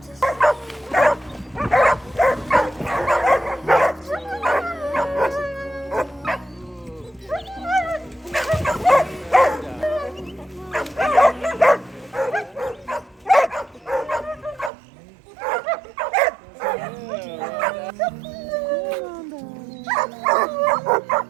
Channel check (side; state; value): left; drops out; at 14.7 s